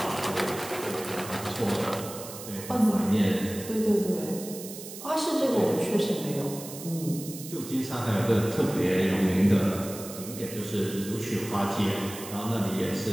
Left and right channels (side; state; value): right; noise; hiss, 12 dB below the sound